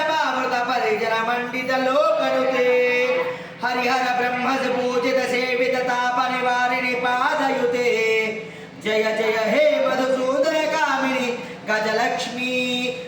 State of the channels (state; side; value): identical; both; correlation 1.00